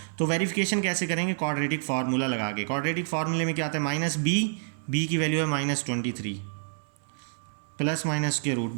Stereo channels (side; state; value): left; silent; 59 dB below the other